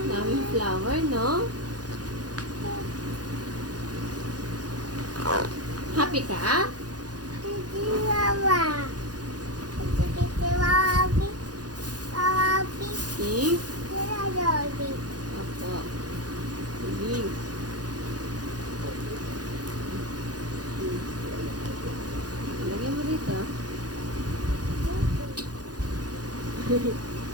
Daming flower, no? Happy ka? Pink? Opo. Pink. Lagyan mo dito.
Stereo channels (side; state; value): left; late; 0.69 ms